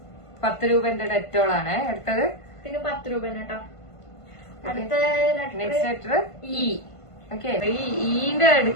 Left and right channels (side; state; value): right; late; 1.5 ms